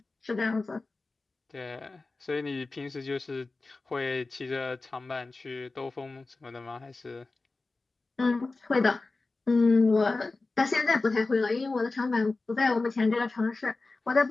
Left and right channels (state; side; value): quieter; right; 3.5 dB